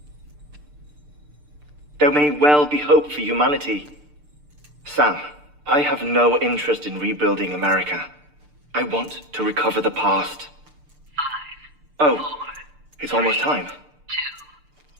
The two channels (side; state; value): left; late; 6.7 ms